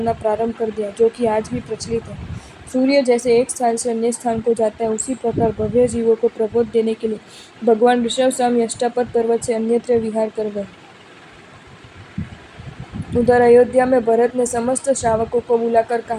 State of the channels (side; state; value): both; identical; correlation 1.00